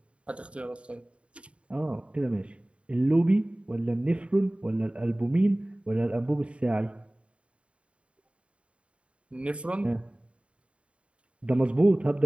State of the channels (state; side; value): late; left; 0.060 ms